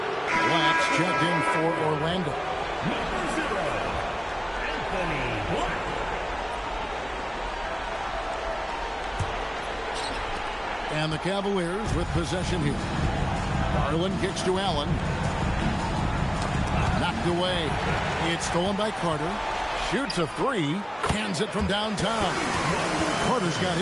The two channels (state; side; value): identical; both; correlation 1.00